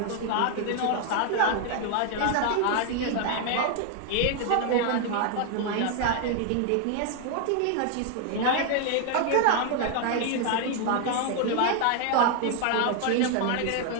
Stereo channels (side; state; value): both; different; correlation 0.00